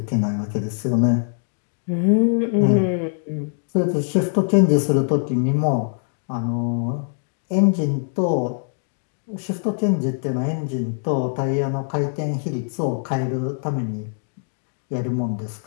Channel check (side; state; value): right; silent; digital silence